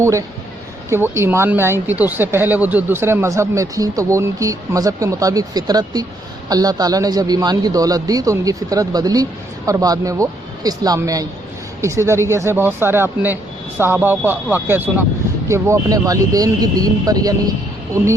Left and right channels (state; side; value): normal; both; correlation 0.72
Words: ہے کہ وہ ایمان میں آئی تھی، تو اس سے پہلے وہ جو دوسرے مذہب میں تھیں تو وہ ان کی مذہب کے مطابق فطرت تھی، اللہ تعالیٰ نے جب ایمان کی دولت دی تو ان کی فطرت بدلی اور بعد میں وہ اسلام میں آئیں۔ اسی طریقے سے بہت سارے آپ نے صحابہ کا واقعہ سنا کہ وہ اپنے والدین کی دین پر یعنی